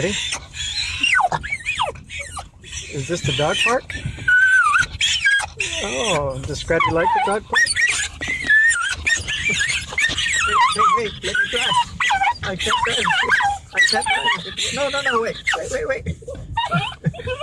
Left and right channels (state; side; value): identical; both; correlation 1.00